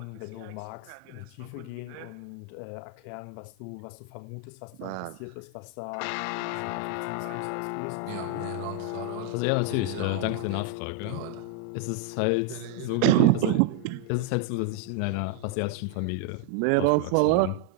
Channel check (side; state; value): both; different; correlation 0.00